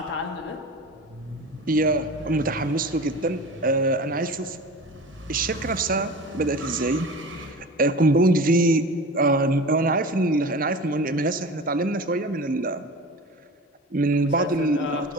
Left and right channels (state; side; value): normal; both; correlation 0.34